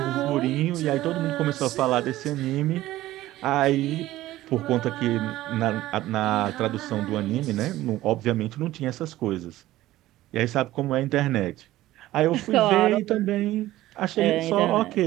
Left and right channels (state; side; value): quieter; left; 15.7 dB